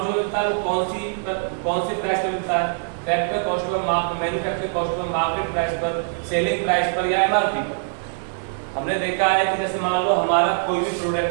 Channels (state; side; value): silent; left; digital silence